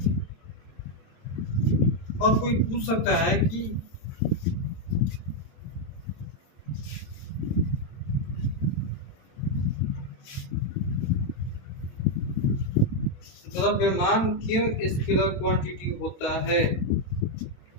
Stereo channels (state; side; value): late; right; 22 ms